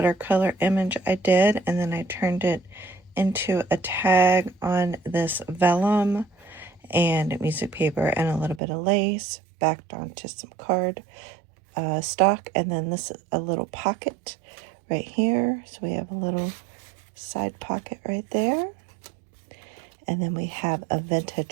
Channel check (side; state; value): left; drops out; at 8.6 s